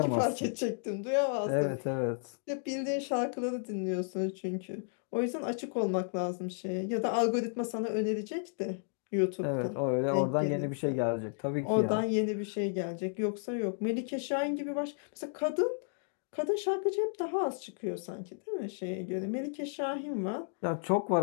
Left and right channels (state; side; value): silent; right; digital silence